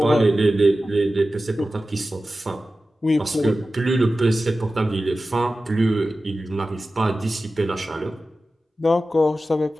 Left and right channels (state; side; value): normal; both; correlation 0.94